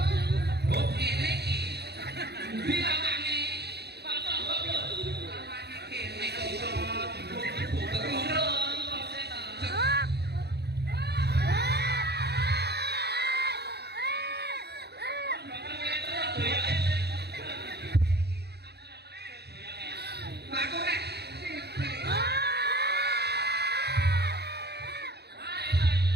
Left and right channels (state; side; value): late; left; 0.48 ms